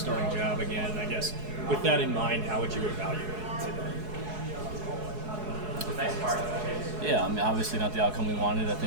job again. I guess with that in mind, how would you evaluate it today? Yeah, I mean, obviously not the outcome we wanted. I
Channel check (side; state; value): left; late; 4.7 ms